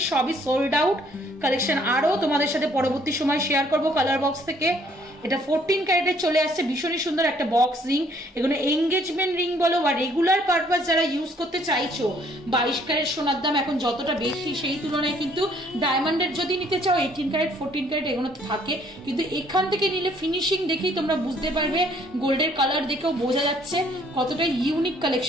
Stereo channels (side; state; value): both; normal; correlation 0.63